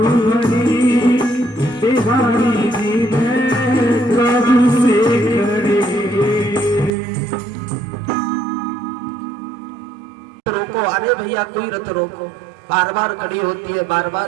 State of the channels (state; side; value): drops out; left; at 6.9 s